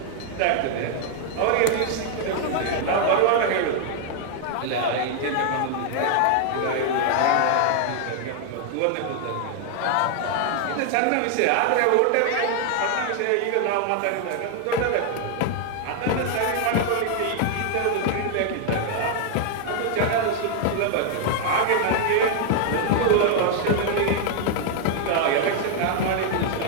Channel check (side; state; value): both; different; correlation 0.00